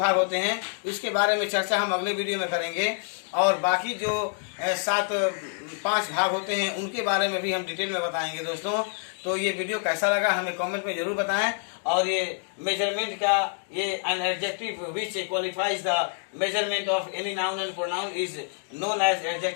होते हैं उसके बारे में चर्चा हम अगले वीडियो में करेंगे। और बाकी जो 5 भाग होते हैं उनके बारे में भी हम डिटेल में बताएंगे दोस्तों। तो ये वीडियो कैसा लगा हमें कमेंट में जरूर बताएं। और ये मेजरमेंट का ये an adjective which qualifies the measurement of any noun and pronoun is known as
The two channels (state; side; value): silent; right; 59 dB below the other